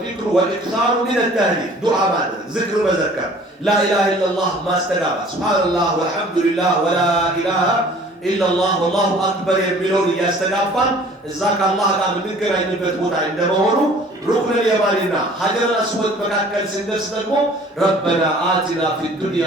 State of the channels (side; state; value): both; normal; correlation 0.51